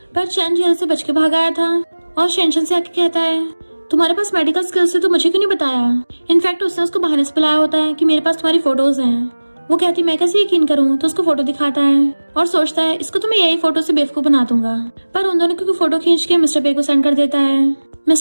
पर चैन जेल से बच के भाग आया था और शेंशन से आके कहता है तुम्हारे पास मेडिकल स्किल्स है तो मुझे क्यों नहीं बताया। इनफैक्ट उसने उसको बहाने से बुलाया होता है कि मेरे पास तुम्हारी फोटोज हैं। वो कहती मैं कैसे यकीन करूं, तो उसको फोटो दिखाता है और सोचता है इसको तो मैं यही फोटो से बेवकूफ बना दूंगा। पर उन दोनों की फोटो खींच के मिस्टर पे को सेंड कर देता है।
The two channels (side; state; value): both; inverted; correlation -1.00